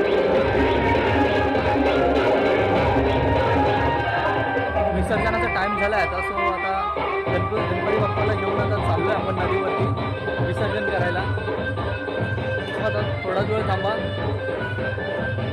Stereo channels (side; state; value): both; identical; correlation 1.00